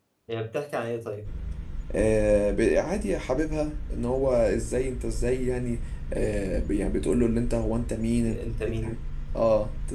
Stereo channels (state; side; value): identical; both; correlation 1.00